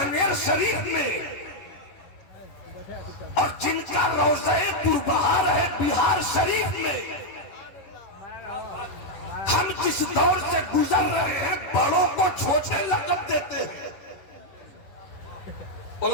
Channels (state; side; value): late; right; 11 ms